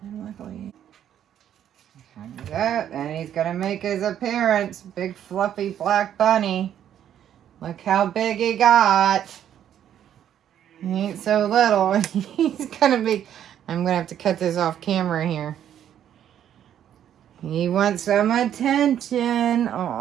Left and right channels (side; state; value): left; quieter; 10.2 dB